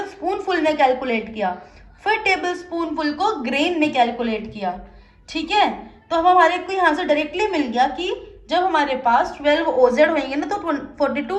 स्पून फुल में कैलकुलेट किया, फिर टेबल स्पून फुल को ग्रेन में कैलकुलेट किया। ठीक है, तो हम हमारे को यहाँ से डायरेक्टली मिल गया कि जब हमारे पास 12 ओजेड होंगे ना तो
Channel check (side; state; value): both; identical; correlation 1.00